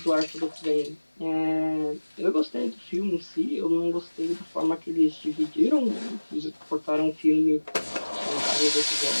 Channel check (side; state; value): both; inverted; correlation -1.00